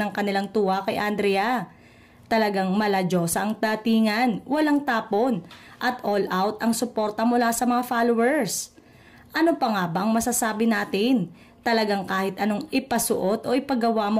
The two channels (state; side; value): identical; both; correlation 1.00